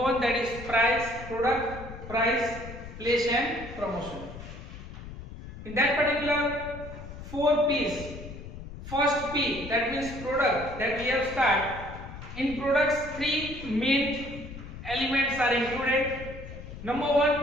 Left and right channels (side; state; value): left; noise; rumble, 12 dB below the sound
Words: that is price, product, price, place and promotion. In that particular 4 P's, first P, that means product, that we have started. In products, 3 main elements are included. Number